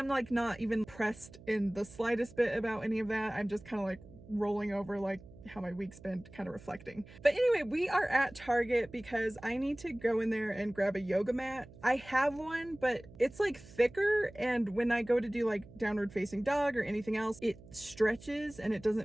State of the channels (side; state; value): right; noise; hum, 20 dB below the sound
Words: like not even pressed in the slightest bit about any of that. I'm just kind of like rolling over like how my week's been, kind of reflecting. But anyway, we are at Target because I need to go in there and grab a yoga mat. I have one, but it's like thicker, and when I go to do like downward facing dog or anything else, it stretches and it